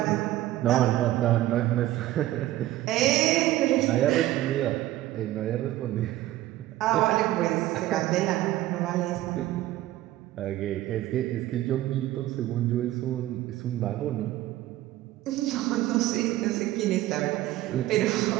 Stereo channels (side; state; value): left; quieter; 15.3 dB